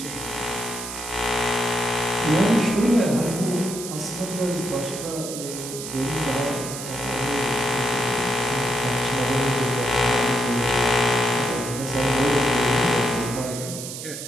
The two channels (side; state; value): right; noise; hiss, 8 dB below the sound